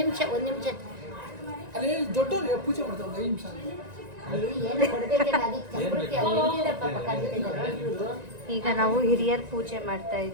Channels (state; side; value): late; left; 1.9 ms